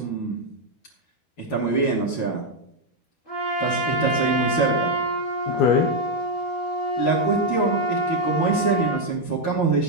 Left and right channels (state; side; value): late; right; 13 ms